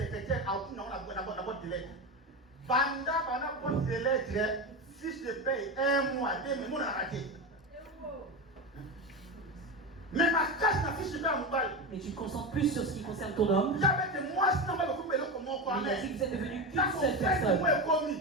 Si je paye 1 mois, 2 mois, on a raté. Mais ma casse n'a fiche pas un bail. Mais tu te concentres plus sur ce qui concerne ton homme. Mais il a dit que vous êtes devenu qu'une seule personne.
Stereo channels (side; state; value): both; normal; correlation 0.19